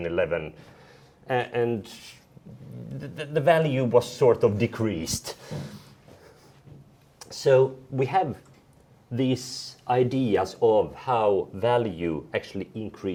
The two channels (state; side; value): identical; both; correlation 1.00